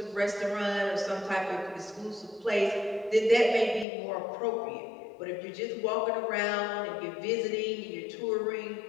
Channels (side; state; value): right; drops out; at 3.9 s